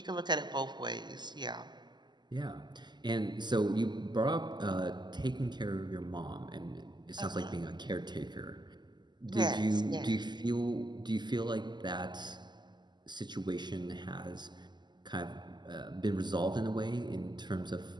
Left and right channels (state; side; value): late; left; 0.21 ms